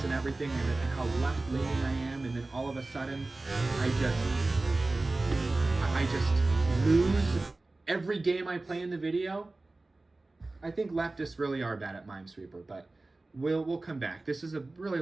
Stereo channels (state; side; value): quieter; left; 3.1 dB